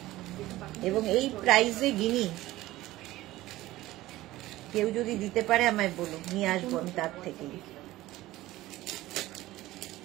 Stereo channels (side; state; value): left; quieter; 16.8 dB